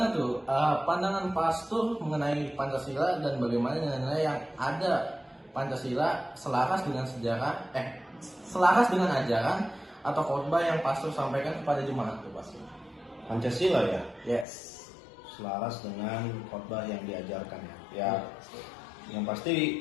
tuh pandangan pastor mengenai Pancasila dan bagaimana nilai yang ada Pancasila selaras dengan selaras dengan ajaran atau khotbah yang pastor sampaikan kepada jemaat tuh pastor? Pancasila ya, Yes. selaras dengan khotbah yang diajarkan ya. Yang pasti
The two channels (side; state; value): right; drops out; at 14.5 s